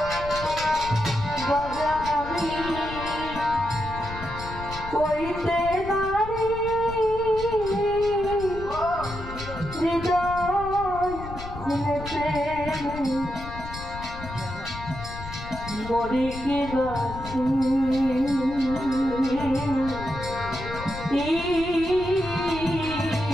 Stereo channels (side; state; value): left; noise; rumble, 11 dB below the sound